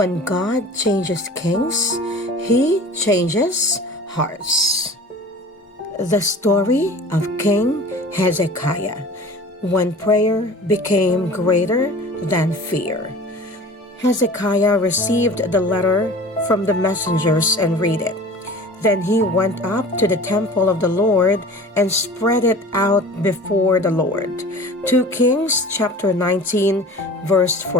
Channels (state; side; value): normal; both; correlation 0.41